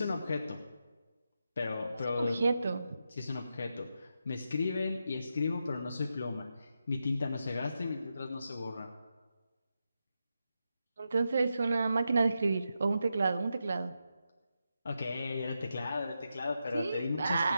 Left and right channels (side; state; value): both; inverted; correlation -0.86